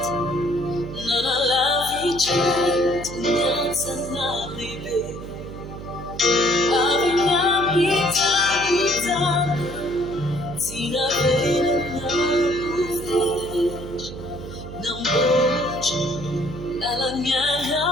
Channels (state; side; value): noise; right; hum, 11 dB below the sound